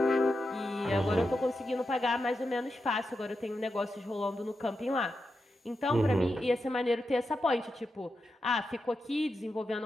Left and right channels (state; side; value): normal; both; correlation 0.88